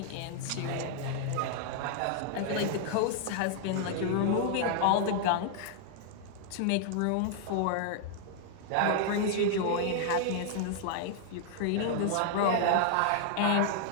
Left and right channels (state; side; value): different; both; correlation 0.00